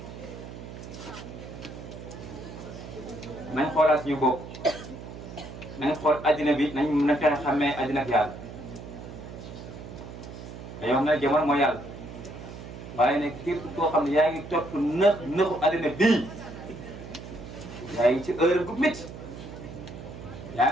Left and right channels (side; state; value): right; noise; hum, 12 dB below the sound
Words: nañ xoolaat suñu bopp nañ xool addina bi nañ fexe xàmmee addina ak yàlla dañoo xam ne jamono mooy yàlla waaye nag képp koo xam ne yaa ngi topp nëxu addina bii yaa ngi ci heure bu métti yaa